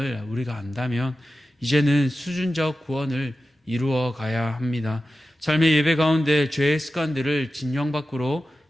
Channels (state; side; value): normal; both; correlation 0.93